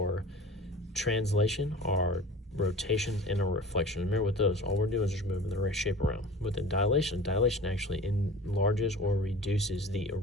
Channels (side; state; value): both; normal; correlation 0.39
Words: translation, our rotation, and our reflection. Remember with those, all we're doing is just moving the shape around. With the dilation actually enlarges or reduces the